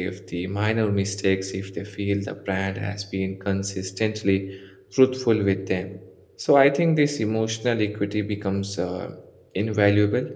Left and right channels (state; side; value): identical; both; correlation 1.00